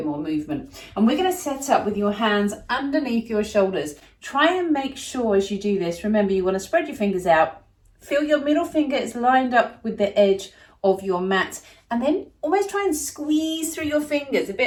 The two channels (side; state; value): both; identical; correlation 1.00